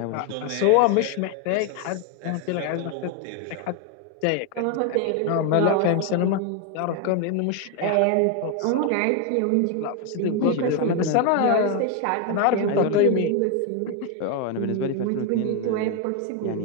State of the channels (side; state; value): both; different; correlation 0.01